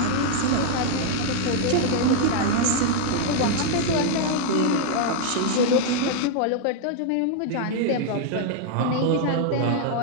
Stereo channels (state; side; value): different; both; correlation 0.00